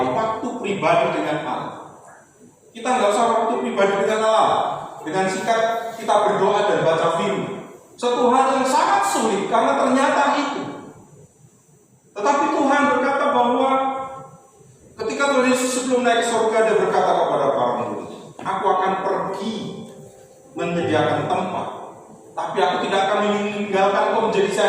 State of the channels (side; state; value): both; identical; correlation 1.00